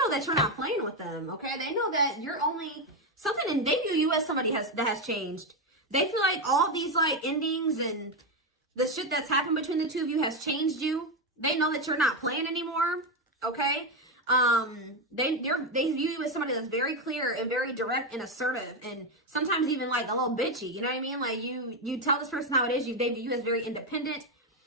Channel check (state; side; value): normal; both; correlation 0.09